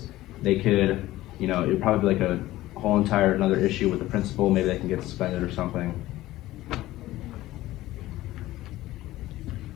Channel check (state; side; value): quieter; right; 16.3 dB